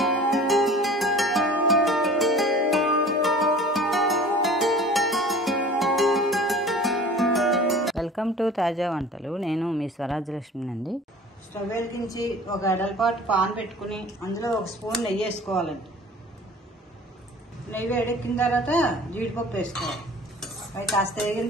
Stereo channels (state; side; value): normal; both; correlation 0.44